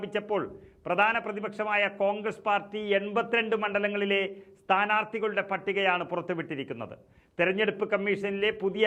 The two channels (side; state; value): both; identical; correlation 1.00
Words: പ്രധാന പ്രതിപക്ഷമായ കോൺഗ്രസ് പാർട്ടി 82 മണ്ഡലങ്ങളിലെ സ്ഥാനാർത്ഥികളുടെ പട്ടികയാണ് പുറത്തുവിട്ടിരിക്കുന്നത്. തെരഞ്ഞെടുപ്പ് കമ്മീഷനിലെ പുതിയ